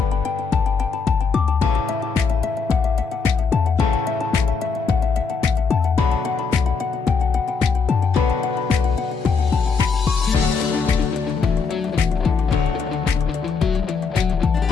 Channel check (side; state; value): right; quieter; 5.0 dB